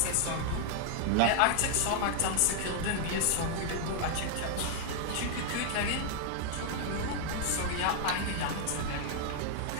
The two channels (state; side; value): different; both; correlation 0.00